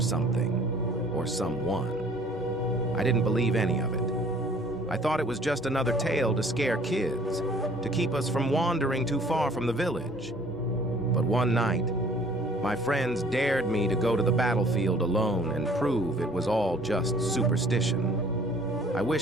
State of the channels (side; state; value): both; normal; correlation 0.54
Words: or someone. I didn't believe any of it. I thought it was just another tale to scare kids, to keep us from wandering too far from the village. But one night, my friends dared me to go to the battlefield alone and prove it was all just superstition. I